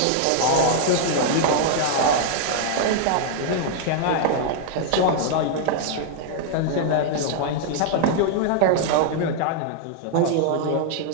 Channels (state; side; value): different; both; correlation 0.00